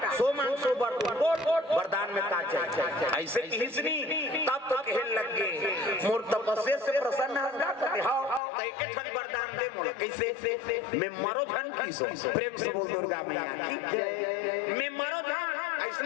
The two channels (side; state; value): right; drops out; at 8.4 s